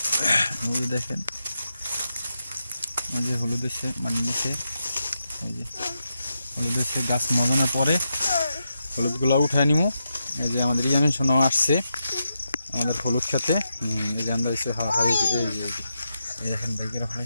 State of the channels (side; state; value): both; inverted; correlation -0.85